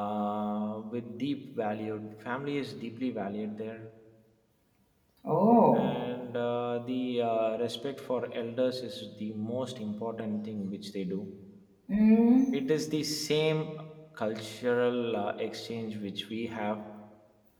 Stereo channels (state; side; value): identical; both; correlation 1.00